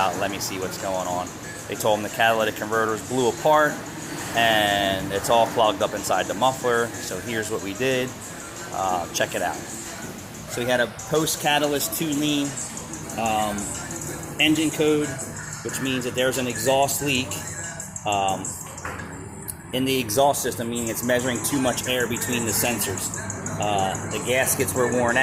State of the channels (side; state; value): both; identical; correlation 1.00